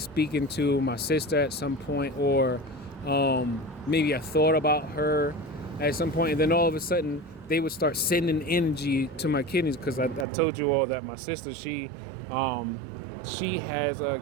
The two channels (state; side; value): drops out; left; at 10.2 s